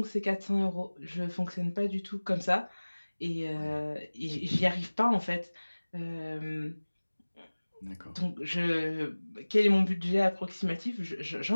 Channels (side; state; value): both; inverted; correlation -1.00